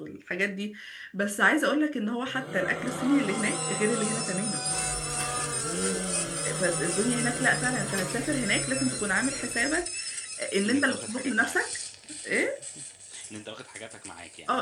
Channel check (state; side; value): identical; both; correlation 1.00